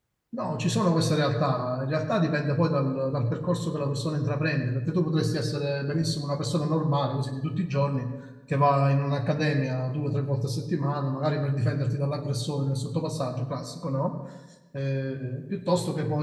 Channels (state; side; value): identical; both; correlation 1.00